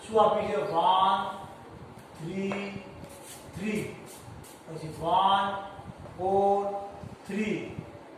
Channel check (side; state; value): both; identical; correlation 1.00